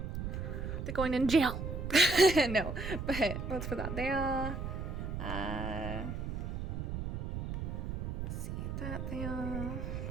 They're going in jail. No, but let's put that there. Let's see that there.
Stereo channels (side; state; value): right; noise; rumble, 4 dB below the sound